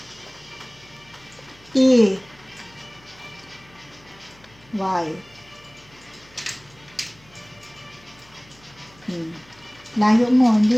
T. Y. Layo mo.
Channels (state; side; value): noise; left; hum, 27 dB below the sound